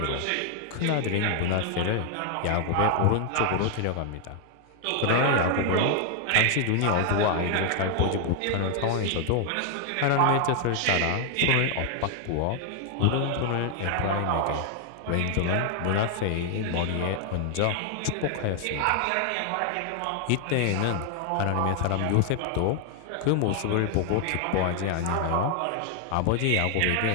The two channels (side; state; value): both; different; correlation 0.00